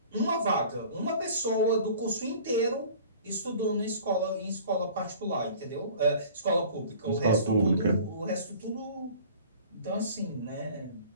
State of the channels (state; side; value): inverted; both; correlation -0.47